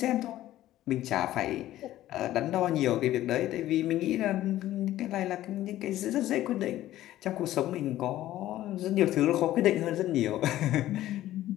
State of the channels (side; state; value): right; quieter; 14.2 dB